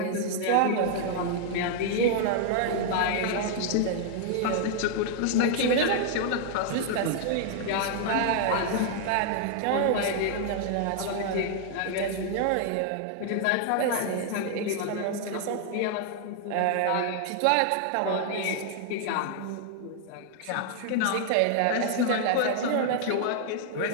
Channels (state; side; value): different; both; correlation 0.00